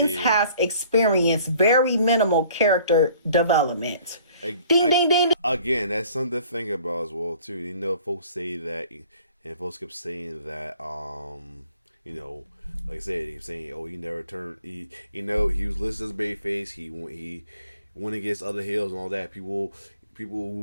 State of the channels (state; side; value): inverted; both; correlation -0.55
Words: has experienced very minimal character development. Ding, ding, ding, ding. Again, that's something to think about as well too. You know, folks say that, and folks kept saying that, like I said, he's saying, oh, he never turned. He was listed as babyface. He went against other heels and all that. People